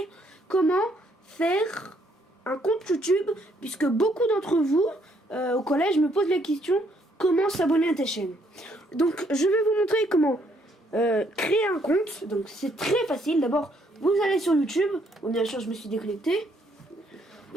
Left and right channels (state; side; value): normal; both; correlation 0.70